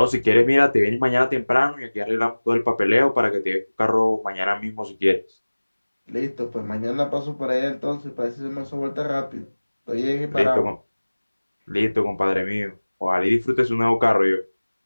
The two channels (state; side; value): inverted; both; correlation -1.00